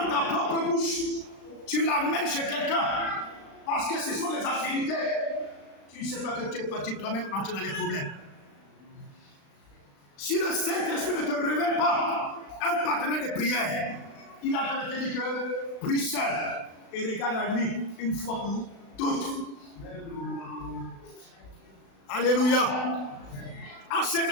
ta propre bouche, tu l'amènes chez quelqu'un, parce que ce sont les affinités, tu ne sais pas que tu es parti toi-même entrer dans les problèmes. Si le Saint-Esprit ne te révèle pas un partenaire de prière, il a en train de te dire que prie seul et regarde à lui une fois pour toutes. Alléluia. En cette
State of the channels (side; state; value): right; late; 36 ms